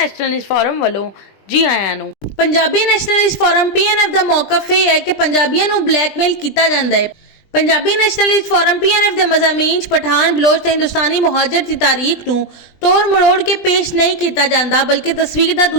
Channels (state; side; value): late; right; 20 ms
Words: फोरम वालों जी आयां नूं। पंजाबी नैशनलिस्ट फोरम PNF ਦਾ ਮੌਕਫ ਇਹ ਹੈ ਕਿ ਪੰਜਾਬੀਆਂ ਨੂੰ ਬਲੈਕਮੇਲ ਕੀਤਾ ਜਾਂਦਾ ਹੈ। पंजाबी नैशनलिस्ट फोरम PNF ਦੇ ਮਜ਼ਾਮੀਨ 'ਚ ਪਠਾਨ ਬਲੋਚ ਤੇ ਹਿੰਦੁਸਤਾਨੀ ਮੁਹਾਜਰ ਦੀ ਤਾਰੀਖ ਨੂੰ ਤੋੜ ਮਰੋੜ ਕੇ ਪੇਸ਼ नहीं ਕੀਤਾ ਜਾਂਦਾ ਬਲਕਿ ਤਸਵੀਰ ਦਾ